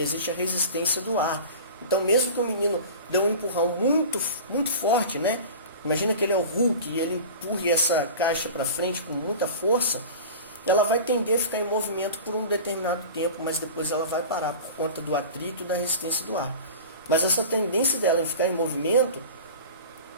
existe a resistência do ar. Então, mesmo que o menino dê um empurrão muito, muito forte, né? Imagina que ele é o Hulk e ele empurre essa caixa para frente com muita força, ela vai tender a ficar em movimento por um determinado tempo, mas depois ela vai parar por conta do atrito e da resistência do ar. Mas essa tendência dela em ficar em movimento,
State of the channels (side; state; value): both; inverted; correlation -0.35